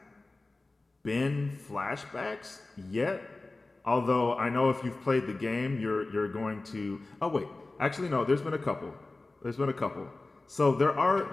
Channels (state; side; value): quieter; right; 3.2 dB